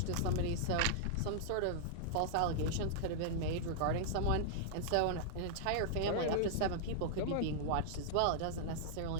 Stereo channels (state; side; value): different; both; correlation -0.01